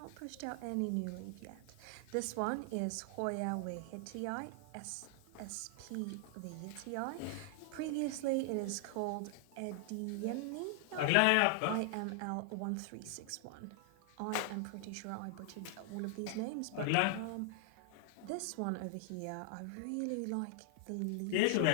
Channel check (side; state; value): both; different; correlation 0.00